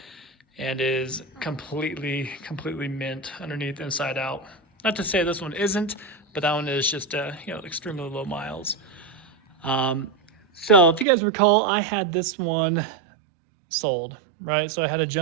and is completely mint underneath, inside out. Not to say this one isn't, but that one is just extremely low miles. So if you guys recall, I had this one sold, right? So I had a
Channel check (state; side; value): drops out; left; at 11.1 s